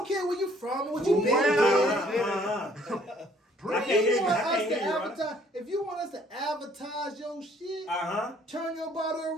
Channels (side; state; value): both; normal; correlation 0.61